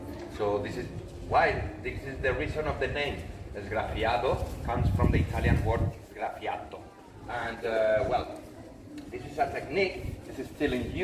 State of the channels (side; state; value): both; identical; correlation 1.00